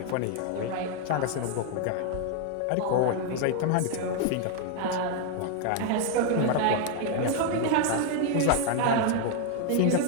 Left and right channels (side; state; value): both; different; correlation 0.01